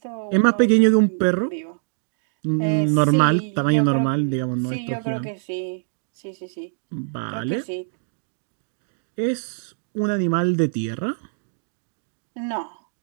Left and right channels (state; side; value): silent; left; digital silence